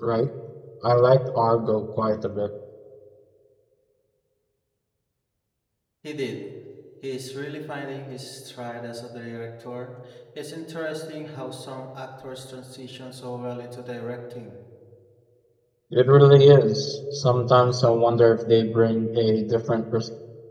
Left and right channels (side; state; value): both; identical; correlation 1.00